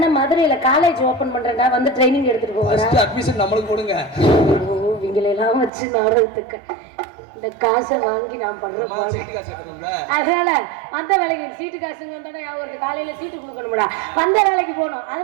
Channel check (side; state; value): left; drops out; at 5.7 s